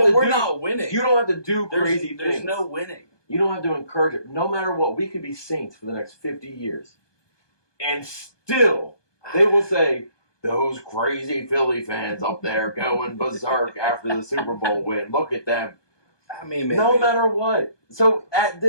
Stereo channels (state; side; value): late; right; 1.2 ms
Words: to we're do. not winning. You don't have to do crazy There's things. no winning. You don't have to encourage it. No matter what, we could be saints for the next 50 years. And still, they will say, those crazy Philly fans up there going berserk after the Super Bowl win. Look at them. I mean, maybe. No matter what. So at